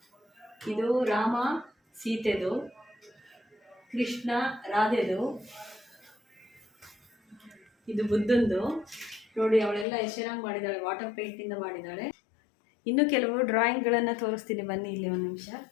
ಇದು ರಾಮ ಸೀತೆದು, ಕೃಷ್ಣ ರಾಧೆದು, ಇದು ಬುದ್ಧಂದು. ನೋಡಿ, ಅವಳೆಲ್ಲ ಎಷ್ಟು ಚೆನ್ನಾಗಿ ಮಾಡಿದ್ದಾಳೆ, ವಾಟರ್ ಪೇಂಟಿಂದ ಮಾಡಿದ್ದಾಳೆ. ಇನ್ನು ಕೆಲವು ಡ್ರಾಯಿಂಗ್ಗಳನ್ನು ತೋರಿಸ್ತೀನಿ, ಬನ್ನಿ ಇಲ್ಲಿ ಒಂದು ನಿಮಿಷ.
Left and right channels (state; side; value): drops out; right; at 9.9 s